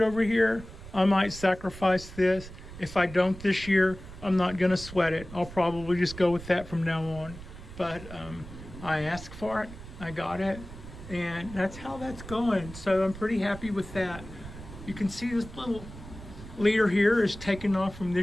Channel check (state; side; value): noise; right; rumble, 14 dB below the sound